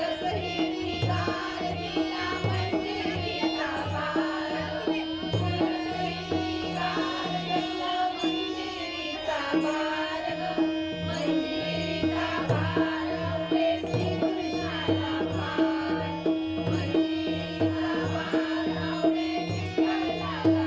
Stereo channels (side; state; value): both; identical; correlation 1.00